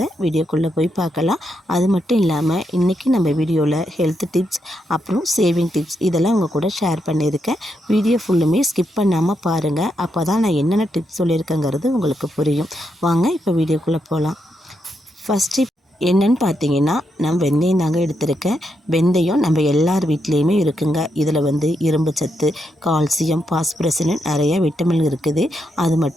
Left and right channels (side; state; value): both; normal; correlation 0.82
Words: வீடியோக்குள்ளே போய் பார்க்கலாம். அது மட்டும் இல்லாமல் இன்றைக்கி நம்ம வீடியோவில் ஹெல்த் டிப்ஸ் அப்புறம் சேவிங் டிப்ஸ் இதெல்லாம் உங்கள் கூட ஷேர் பண்ணியிருக்கேன். வீடியோ ஃபுல்லுமே ஸ்கிப் பண்ணாமல் பாருங்கள். அப்போ தான் நான் என்னென்ன டிப்ஸ் சொல்லியிருக்கேங்கிறது உங்களுக்கு புரியும். வாங்க இப்போ வீடியோக்குள்ளே போகலாம். ஃபஸ்ட்டு என்னன்னு பார்த்தீங்கன்னா, நான் வெந்தயம் தாங்க எடுத்திருக்கேன். வெந்தயம் நம்ம எல்லார் வீட்லேயுமே இருக்குங்க. இதில் இரும்பு சத்து, கால்சியம், பாஸ்பரஸ்னு நிறைய விட்டமின் இருக்குது. அது